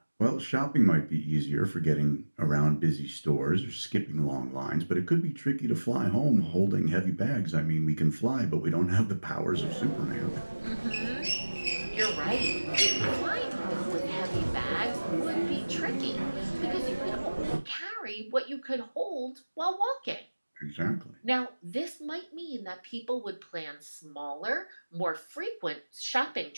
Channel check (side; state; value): both; inverted; correlation -1.00